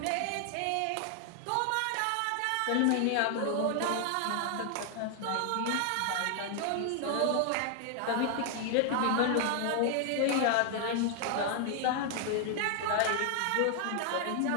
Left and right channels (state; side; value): different; both; correlation 0.00